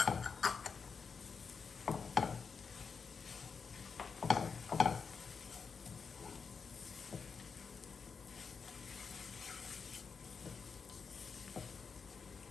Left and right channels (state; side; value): quieter; right; 5.5 dB